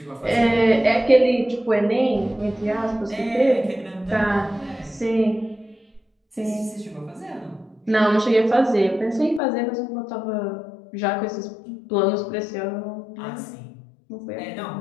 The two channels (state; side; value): drops out; right; at 9.4 s